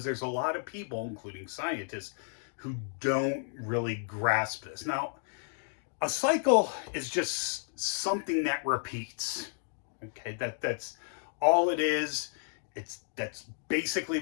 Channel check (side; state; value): right; silent; digital silence